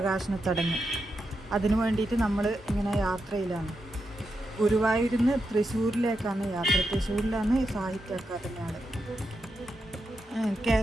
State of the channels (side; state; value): both; normal; correlation 0.86